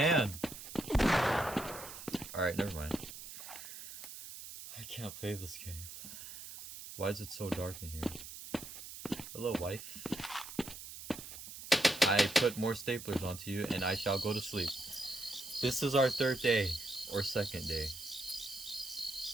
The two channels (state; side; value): noise; right; hiss, 11 dB below the sound